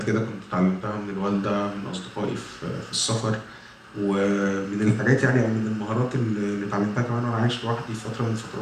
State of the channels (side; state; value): both; identical; correlation 1.00